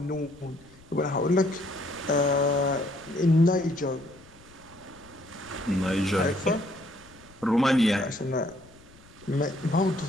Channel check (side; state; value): left; noise; rumble, 25 dB below the sound